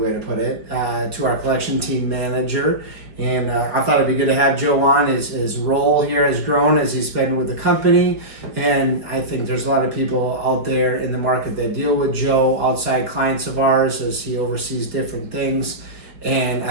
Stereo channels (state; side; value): late; left; 5.0 ms